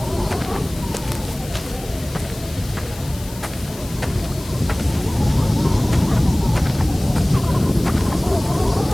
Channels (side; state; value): left; noise; hiss, 17 dB below the sound